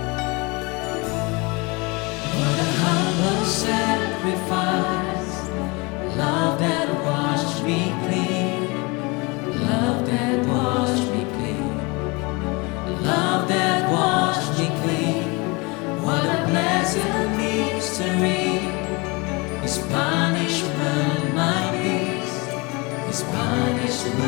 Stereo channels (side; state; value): right; quieter; 27.2 dB